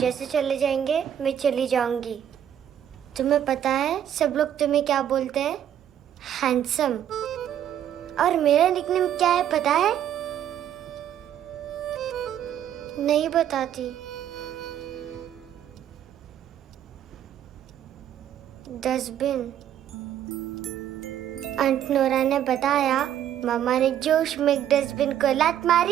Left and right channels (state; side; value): quieter; left; 10.3 dB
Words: चले जाएंगे मैं चली जाऊंगी। तुम्हें पता है सब लोग तुम्हें क्या बोलते हैं? हैंडसम। और मेरा निकनेम क्या है पता है? नहीं बताती। डस्टबिन। आंट नोरा ने बताया मामा ने जोश में एक डस्टबिन को लात